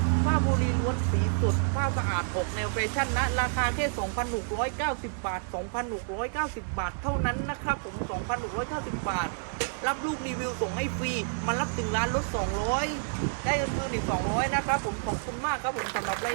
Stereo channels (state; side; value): silent; left; 57 dB below the other